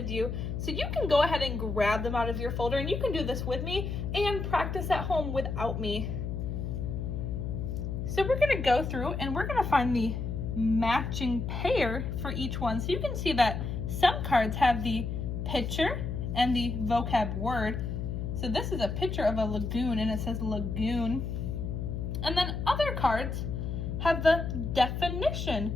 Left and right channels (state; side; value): noise; left; hum, 3 dB below the sound